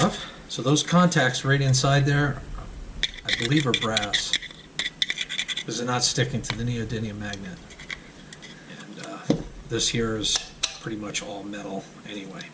So those contacts right inside there, I believe are brass, because they're not sticking to the neodymium magnet. And this here is pretty much all metal anyway.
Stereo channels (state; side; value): identical; both; correlation 1.00